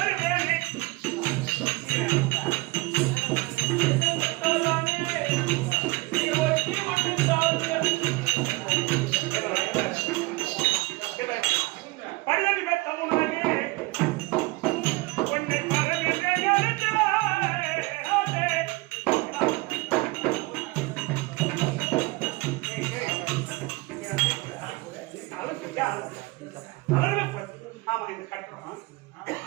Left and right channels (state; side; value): quieter; left; 22.5 dB